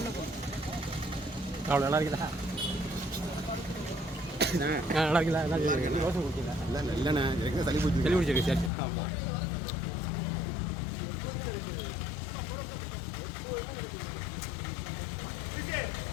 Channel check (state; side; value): drops out; right; at 8.7 s